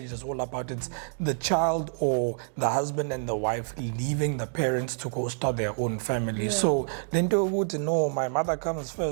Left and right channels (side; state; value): left; silent; digital silence